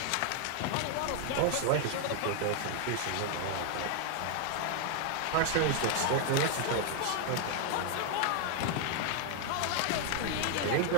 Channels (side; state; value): both; different; correlation 0.00